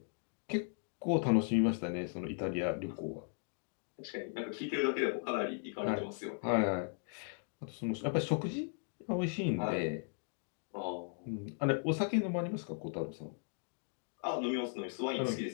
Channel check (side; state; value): right; silent; 53 dB below the other